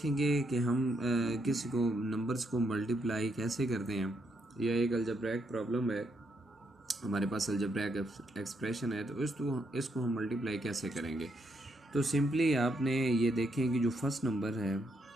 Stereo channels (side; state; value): both; normal; correlation 0.77